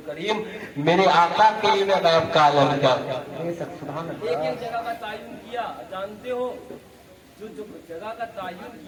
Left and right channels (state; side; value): identical; both; correlation 1.00